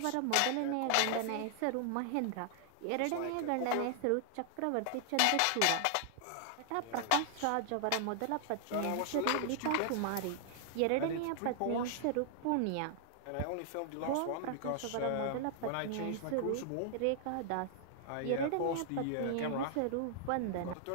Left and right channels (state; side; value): different; both; correlation 0.00